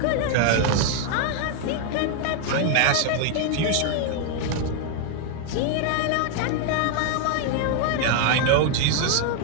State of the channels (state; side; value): different; both; correlation 0.00